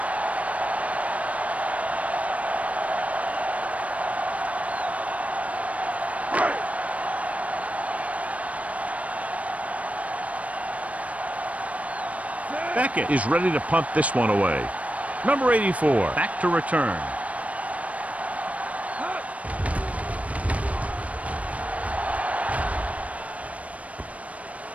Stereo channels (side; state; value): left; late; 0.067 ms